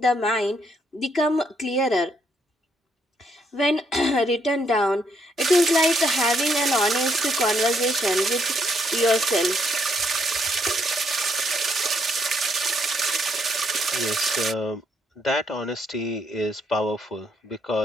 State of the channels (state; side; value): normal; both; correlation 0.73